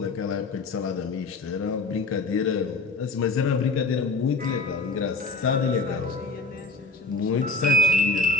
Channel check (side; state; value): right; quieter; 3.3 dB